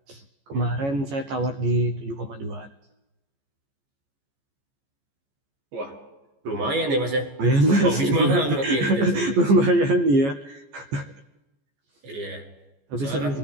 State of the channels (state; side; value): late; left; 14 ms